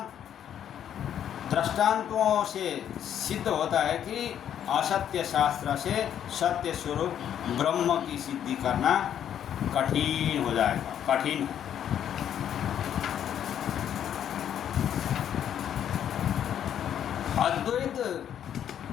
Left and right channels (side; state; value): right; quieter; 9.7 dB